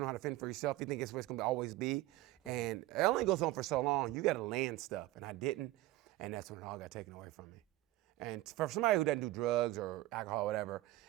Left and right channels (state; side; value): quieter; left; 16.9 dB